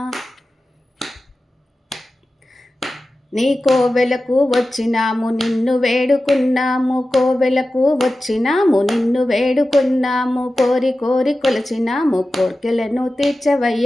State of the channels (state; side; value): normal; both; correlation 0.94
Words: నీ కోవెలకు వచ్చినాము నిన్ను వేడుకున్నాము కోవెలకు వచ్చినాము నిన్ను వేడుకున్నాము కోరి కోరి కొలిచినాము కోర్కెలను